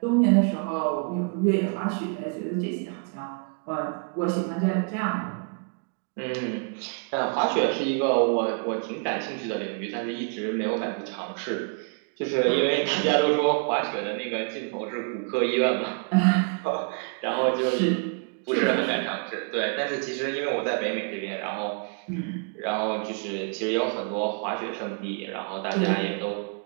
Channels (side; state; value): left; quieter; 39.2 dB